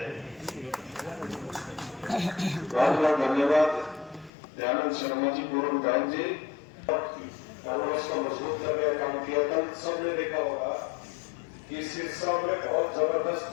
बहुत बहुत धन्यवाद दयानंद शर्मा जी, पूर्व विधायक जी। कांग्रेस को मजबूत करने का काम किया। कल सबने देखा होगा कि सिरसा में बहुत जबरदस्त,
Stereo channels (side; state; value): right; drops out; at 4.3 s